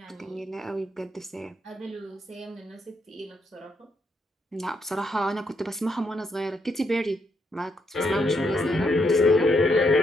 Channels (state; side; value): normal; both; correlation 0.77